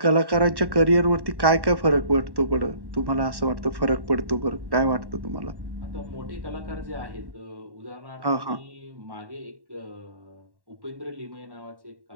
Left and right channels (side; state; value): left; late; 1.1 ms